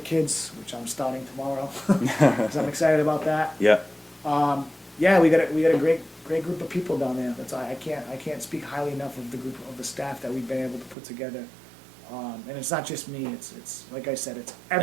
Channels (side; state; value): left; drops out; at 11.0 s